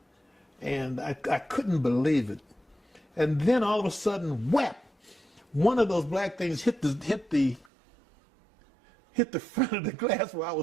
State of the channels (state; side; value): drops out; left; at 7.7 s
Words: and I couldn't believe it. And then all of a sudden, whap, one of those black things hit the front of the glass where I